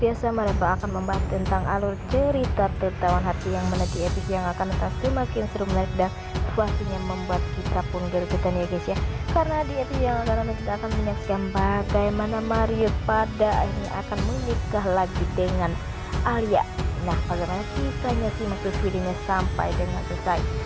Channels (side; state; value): both; identical; correlation 1.00